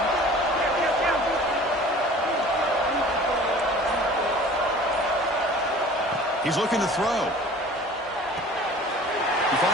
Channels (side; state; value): both; normal; correlation 0.45